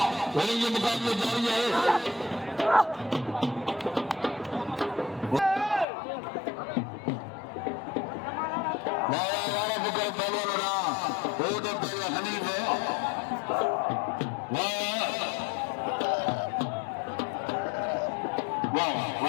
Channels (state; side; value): drops out; right; at 5.9 s